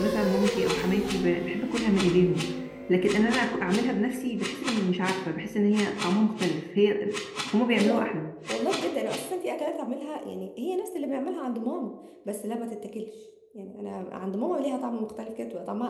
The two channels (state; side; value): identical; both; correlation 1.00